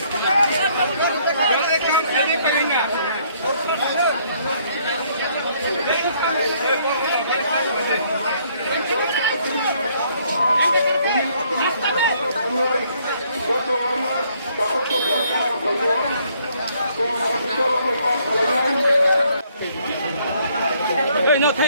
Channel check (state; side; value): inverted; both; correlation -0.66